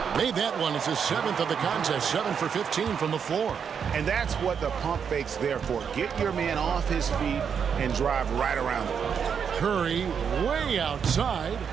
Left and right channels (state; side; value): quieter; left; 7.1 dB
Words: Made that one. It's his 7th of the contest, 7 for 15 from the floor. And that's what the pump fake's there for. Get your man off his feet and drive right around him. Curry way outside.